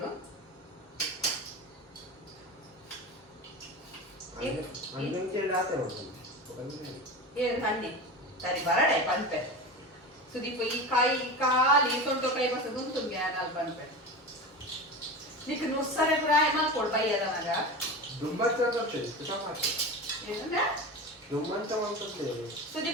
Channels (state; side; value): normal; both; correlation 0.28